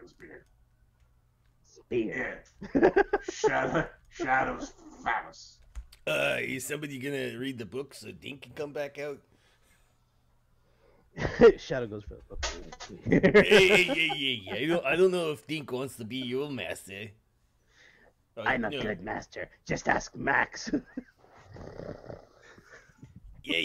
spear. Spear. Yeah. Shadow's phallus. Is somebody gonna read the book so Dink can come back out? Shadow goes for the book. Hey. I don't know if Dink wants to be your master. I'm a good master. Just ask Max.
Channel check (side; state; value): both; identical; correlation 1.00